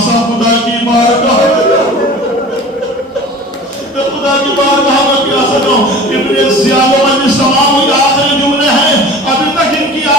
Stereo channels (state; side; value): normal; both; correlation 0.40